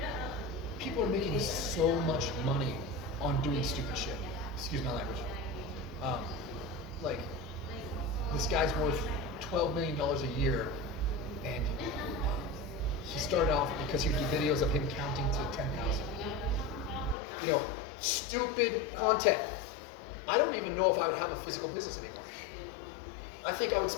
people are making so much money on doing stupid shit. Excuse my language. Like this guy's worth $12 million a year, and he started off because he would do videos of him counting to 10,000. You know, stupid content. I don't even know if I would have a physical business anymore. I think I would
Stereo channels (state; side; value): drops out; right; at 17.2 s